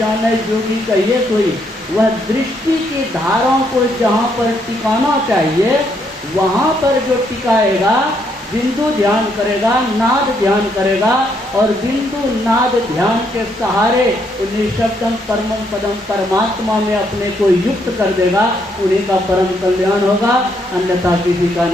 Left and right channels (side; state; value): both; normal; correlation 0.73